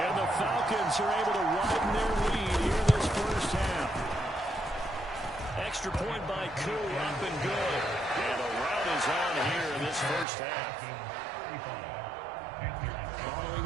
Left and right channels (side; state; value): left; drops out; at 10.2 s